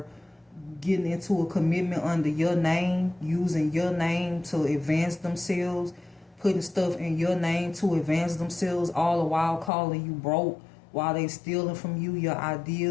getting into a commitment under your name, using your name to advance themselves, putting stuff in your name to advance themselves, all the while calling you broke, while they stealing from you your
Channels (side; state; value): right; drops out; at 9.7 s